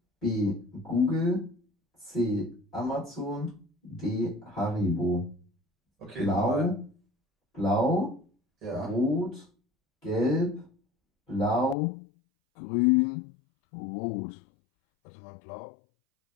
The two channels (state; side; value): drops out; right; at 11.8 s